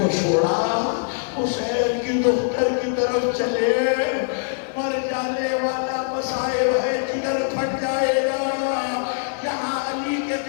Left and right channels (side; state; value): right; silent; digital silence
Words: چھوڑا، حسین کی دختر کی طرف چلے، مر جانے والا مصائب ہے، جگر پھٹ جائے گا۔ یہاں علی کے